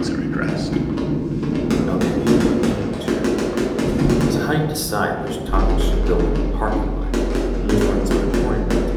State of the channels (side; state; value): both; identical; correlation 1.00